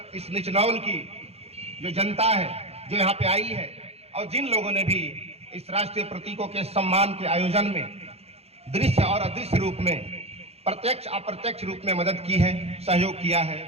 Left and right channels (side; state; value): left; late; 0.30 ms